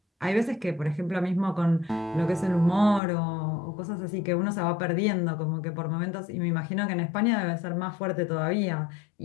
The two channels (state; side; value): drops out; right; at 3.0 s